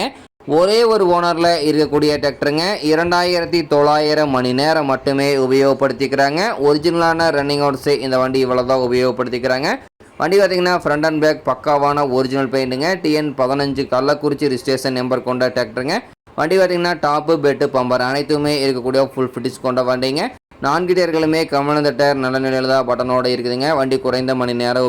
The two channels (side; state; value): both; identical; correlation 1.00